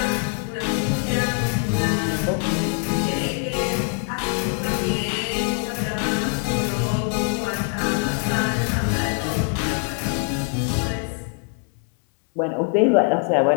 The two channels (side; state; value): right; quieter; 38.4 dB